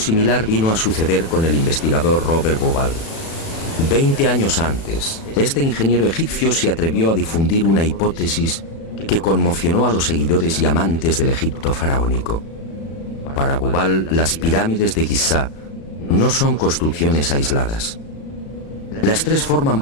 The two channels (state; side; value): late; right; 36 ms